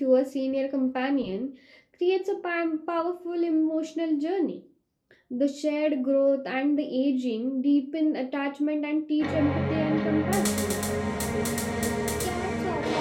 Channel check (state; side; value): identical; both; correlation 1.00